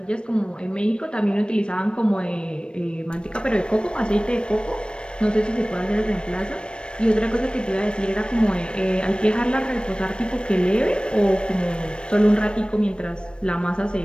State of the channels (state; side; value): late; right; 0.055 ms